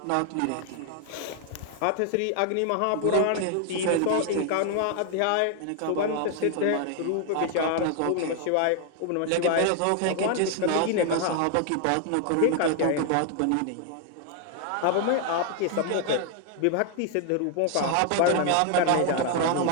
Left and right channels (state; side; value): different; both; correlation 0.00